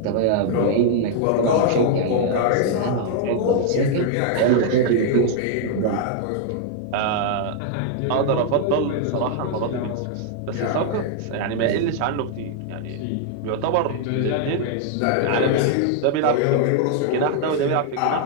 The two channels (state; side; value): different; both; correlation 0.00